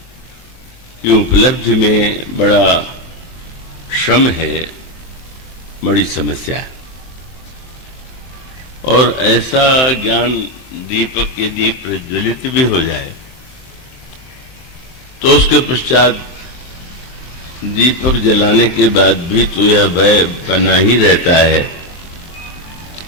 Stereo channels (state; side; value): late; right; 23 ms